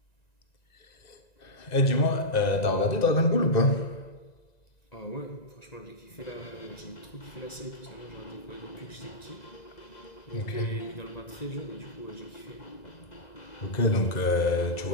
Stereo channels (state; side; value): late; right; 2.0 ms